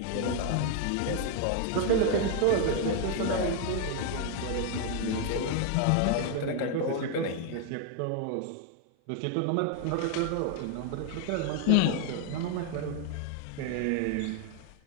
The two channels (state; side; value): different; both; correlation 0.00